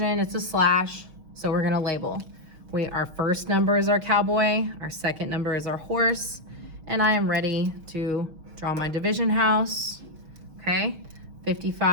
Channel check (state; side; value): late; left; 6.3 ms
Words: it's a slash, so we're gonna label. Our first number is our cowboy, our second number is our horse, and I am ready to draw my division house, okay?